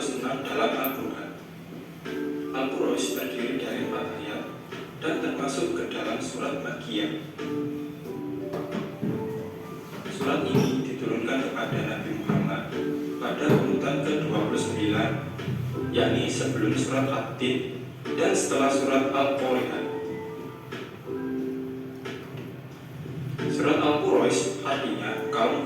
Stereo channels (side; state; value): both; identical; correlation 1.00